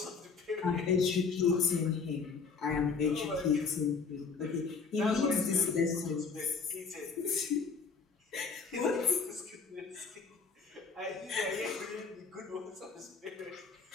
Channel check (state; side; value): quieter; right; 5.1 dB